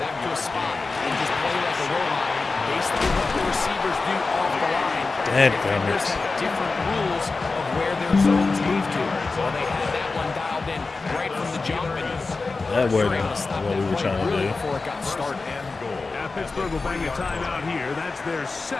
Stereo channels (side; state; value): right; quieter; 3.9 dB